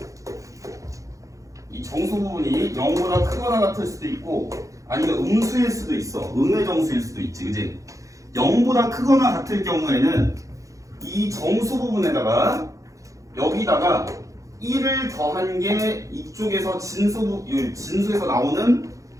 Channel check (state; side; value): late; left; 0.16 ms